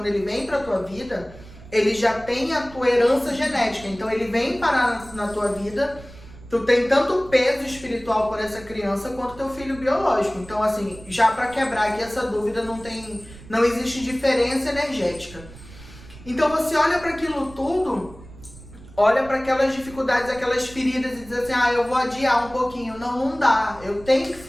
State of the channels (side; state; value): right; noise; rumble, 19 dB below the sound